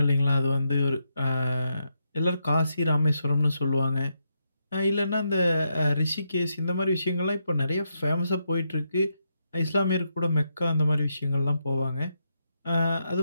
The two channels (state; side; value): inverted; both; correlation -0.82